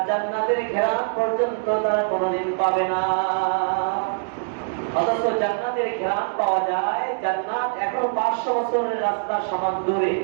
জান্নাতের ঘ্রাণ পর্যন্ত তারা কোনোদিন পাবে না। অথচ জান্নাতের ঘ্রাণ পাওয়া যায়, জান্নাত এখনো 500 বছরের রাস্তা সমান দূরে,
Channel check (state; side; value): silent; left; digital silence